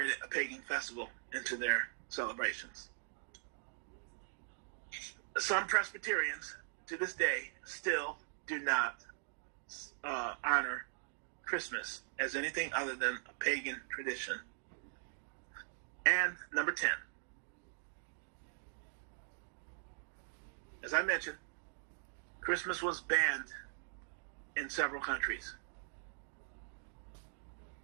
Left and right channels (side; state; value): left; silent; digital silence